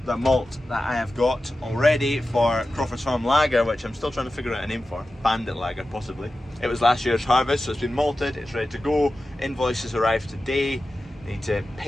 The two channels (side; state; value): both; normal; correlation 0.93